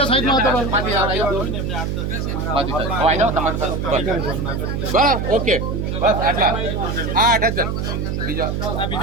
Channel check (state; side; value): noise; right; hum, 2 dB below the sound